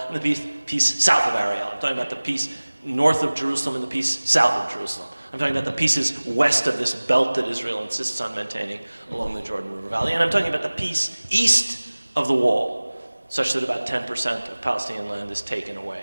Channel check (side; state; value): both; inverted; correlation -1.00